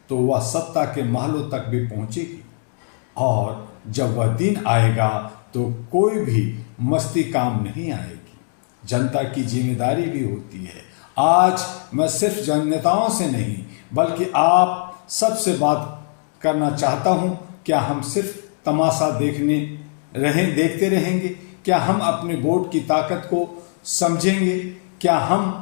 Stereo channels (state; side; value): silent; right; 55 dB below the other